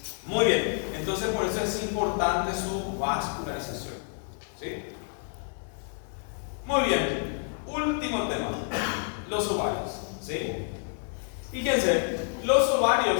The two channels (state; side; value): silent; right; 58 dB below the other